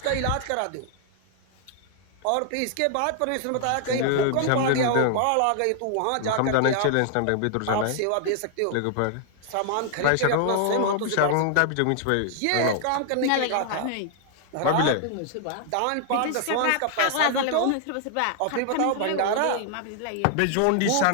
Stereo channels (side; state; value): both; different; correlation 0.00